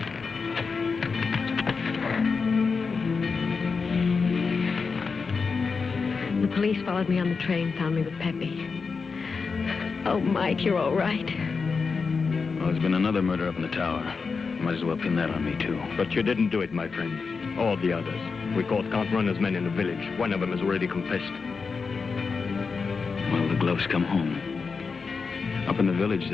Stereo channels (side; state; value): right; quieter; 5.0 dB